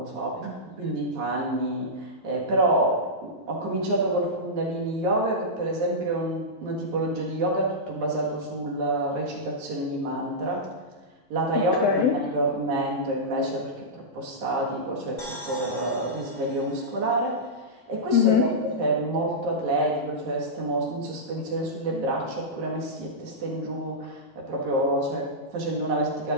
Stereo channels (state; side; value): normal; both; correlation -0.12